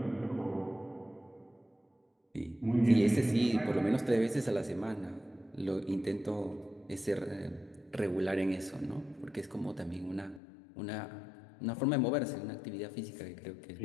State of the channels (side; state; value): right; drops out; at 10.4 s